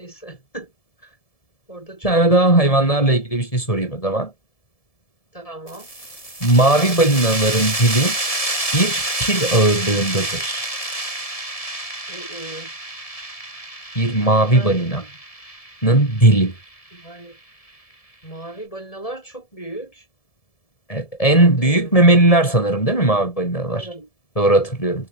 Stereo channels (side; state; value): right; late; 1.7 ms